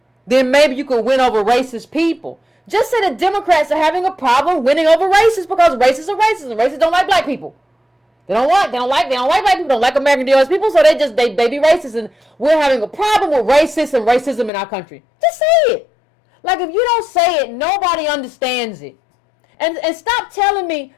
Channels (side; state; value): right; drops out; at 14.5 s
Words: then maybe you could win over racist people. Just say that Democrats are having a problem winning over racists because racists are racist and racists don't like black people. They don't like black people, don't like American DOS people, so they be racist, and we're having a problem with racists and racism in our country. Just say it. Like, if you don't say it, nobody understands it. And stop telling me,